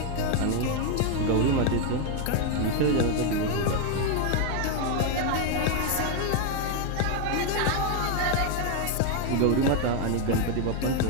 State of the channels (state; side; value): different; both; correlation 0.01